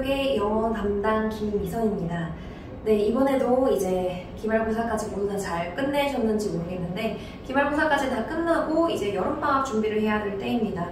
영어 담당 김미선입니다. 네, 이번에도 이제 기말고사까지 모두 다 잘 끝내셨는지 모르겠는데 기말고사까지 다 끝나고 이제 여름방학 준비를 해야 될 때입니다.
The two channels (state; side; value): identical; both; correlation 1.00